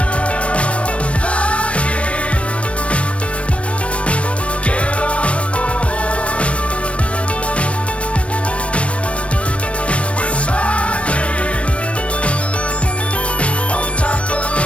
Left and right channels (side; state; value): right; late; 0.062 ms